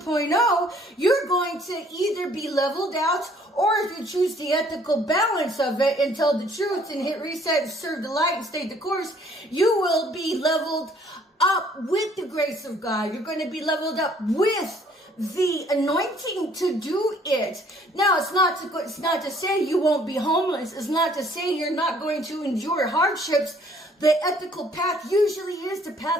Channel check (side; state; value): both; normal; correlation 0.60